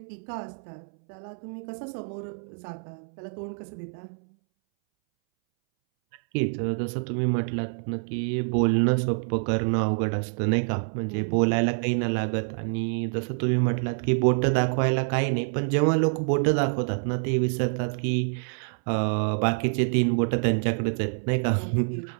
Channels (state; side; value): silent; left; 61 dB below the other